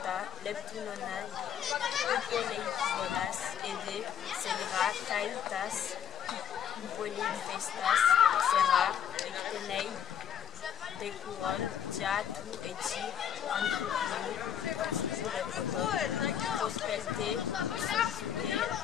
Leptunonai, Upoleiponas, Ede, Selra, Kaitas, Upoleifestas, Sera, Rectenei, Decuron, Diatu, Eti, Anthropino, Purepoton, Prospelte, Suzude,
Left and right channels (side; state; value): right; quieter; 8.7 dB